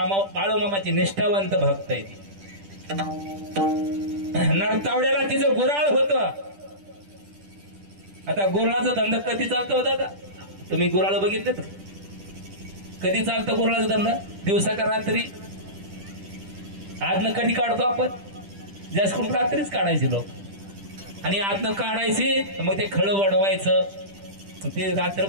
निष्ठावंत भक्त आहे. नरतावड्याला तिचं गुराळ होतं. आता गुराळाचा धंदा कधी चालतो दादा? तुम्ही गुराळ बघितले? कधी चालतं गुराळाचा धंदा? दिवसा का रात्री? आजनं कधी काढतो आपण? जास्त करून रात्रीच काढायचे लोक. आणि आजनं काढायचे मग ते खळं वाढवायचं. ते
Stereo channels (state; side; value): late; left; 10 ms